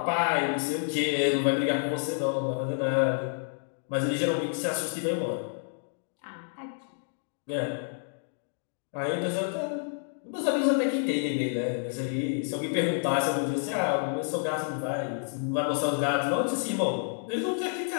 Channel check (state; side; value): silent; right; digital silence